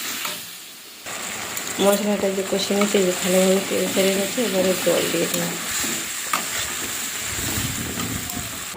মশলাটা যে কষে নিয়েছে, যে ভালোভাবে তেল ছেড়ে গেছে, এবারে জল দিয়ে দেবো।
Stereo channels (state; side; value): identical; both; correlation 1.00